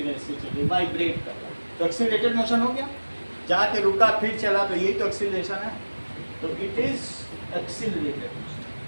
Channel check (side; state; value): both; inverted; correlation -1.00